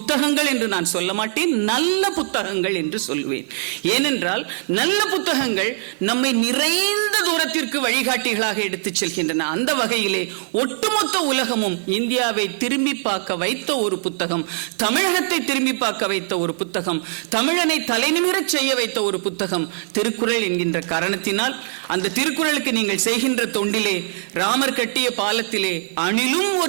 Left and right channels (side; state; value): left; silent; digital silence